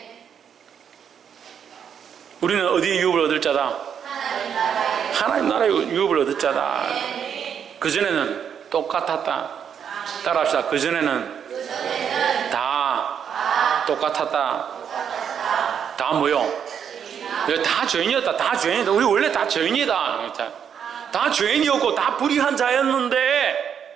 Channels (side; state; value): left; quieter; 8.0 dB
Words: 우리는 어디에 유업을 얻을 자다? 하나님 나라의 유업을 얻을 자다. 그전에는 똑같았다. 따라합시다. 그전에는 다 똑같았다. 다 뭐요? 다 죄인이었다. 다 죄인이다. 우리 원래 다 죄인이다. 다 죄인이었고 다 불의한 자였는데